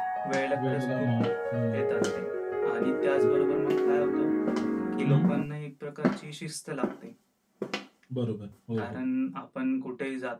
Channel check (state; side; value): identical; both; correlation 1.00